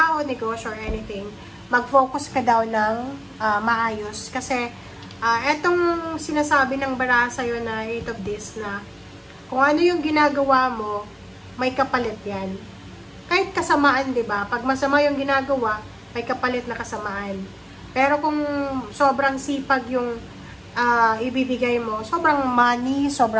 negosyo, or anything, mag-focus ka daw ng maayos. Kasi, etong sinasabi ng baraha sa'yo na 8 of Discs na Kung ano yung ginagawa mo, may kapalit yan. Kahit kasamaan, di ba? Pag masama yung ginagawa, may kapalit na kasamaan. Pero kung sobrang sipag yung ibibigay mo, sobrang money,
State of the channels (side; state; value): both; identical; correlation 1.00